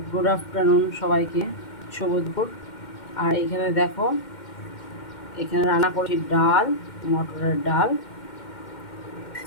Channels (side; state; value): right; late; 2.1 ms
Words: Good afternoon সবাইকে, শুভ দুপুর। আর এখানে দেখো, এখানে রান্না করছি ডাল, মটরের ডাল,